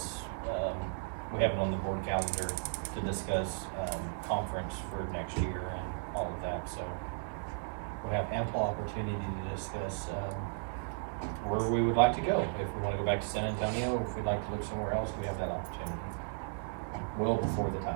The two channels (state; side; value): silent; left; digital silence